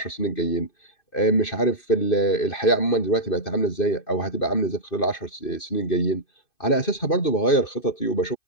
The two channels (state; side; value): late; right; 2.6 ms